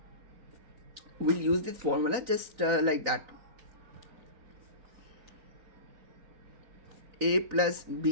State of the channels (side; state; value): left; late; 4.0 ms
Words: we'll use this formula just like that. A plus